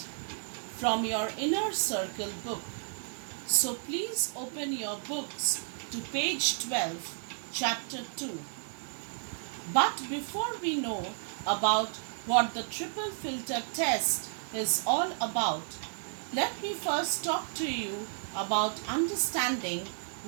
from your inner circle book. So please open your books to page 12, chapter 2. But before we know about what the triple filter test is all about, let me first talk to you about understanding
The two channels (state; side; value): silent; left; digital silence